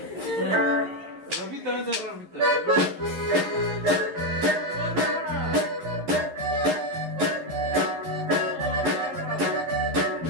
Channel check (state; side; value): late; left; 11 ms